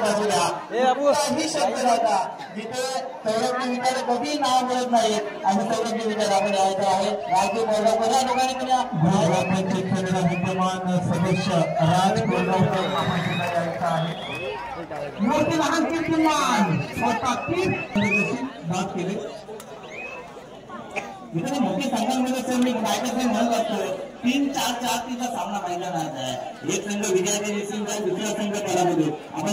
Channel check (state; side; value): identical; both; correlation 1.00